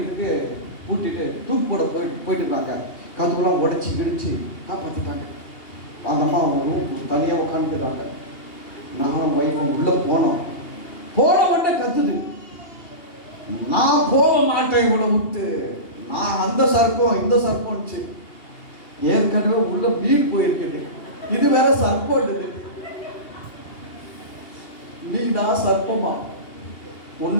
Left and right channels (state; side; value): late; right; 2.8 ms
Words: பூட்டிட்டு தூக்கு போட போயிட்டு இருக்காங்க. கதுக்குலாம் உடைச்சி கிடிச்சு காப்பாற்றிட்டாங்க. அந்த அம்மா அவங்க தனியாக உட்காந்துருக்காங்க. நானும் ஒய்ஃபும் உள்ள போனோம். போன உடனே கத்துது, நான் போக மாட்டேன் இவ்வளோ விட்டு, நான் அந்த சர்ப்பம் இந்த சர்ப்பம்ச்சு. ஏற்கனவே உள்ள மீன் போயிருக்குது, இது வேற சர்ப்பம். மீனா சர்ப்பமா